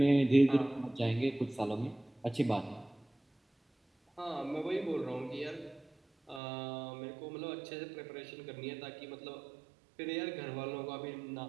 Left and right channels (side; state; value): left; drops out; at 6.4 s